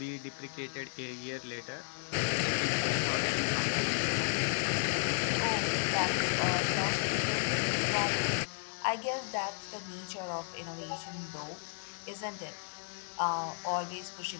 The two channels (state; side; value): silent; right; 55 dB below the other